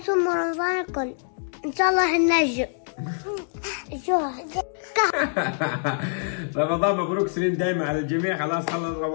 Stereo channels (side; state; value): right; silent; digital silence